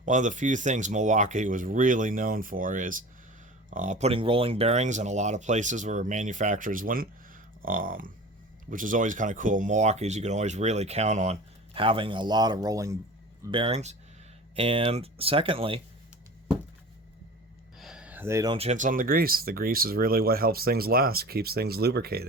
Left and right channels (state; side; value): normal; both; correlation 0.37